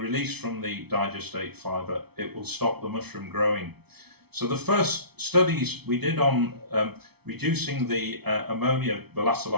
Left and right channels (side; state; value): left; late; 0.98 ms